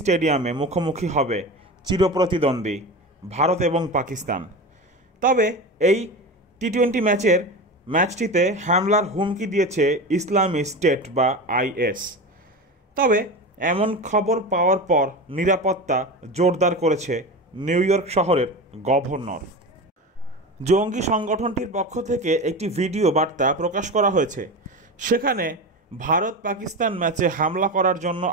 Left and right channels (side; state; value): both; normal; correlation 0.26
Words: স্টেডিয়ামে মুখোমুখি হবে চিরপ্রতিদ্বন্দ্বী ভারত এবং পাকিস্তান। তবে এই টি-20 ম্যাচটিতে হামলার হুমকি দিয়েছে ইসলামী স্টেট বা আইএস। তবে এমন খবর পাওয়ার পর নিরাপত্তা জোরদার করেছে নিউ ইয়র্ক শহরের গভর্নর। জঙ্গি সংগঠনটির পক্ষ থেকে একটি ভিডিও বার্তা প্রকাশ করা হয়েছে। সেখানে ভারত পাকিস্তান ম্যাচে হামলা করার জন্য